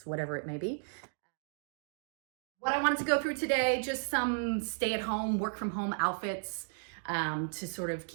whatever it may be. What I wanted to go through today, just some stay-at-home, work-from-home outfits to sort of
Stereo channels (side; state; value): left; silent; digital silence